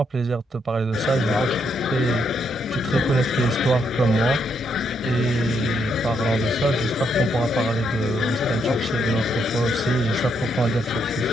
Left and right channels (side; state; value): both; normal; correlation 0.76